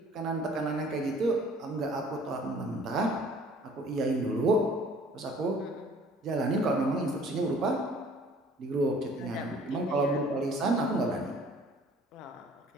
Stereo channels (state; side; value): normal; both; correlation 0.53